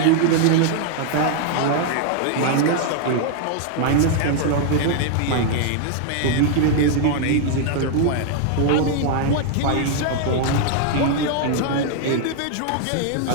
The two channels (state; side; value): different; both; correlation -0.01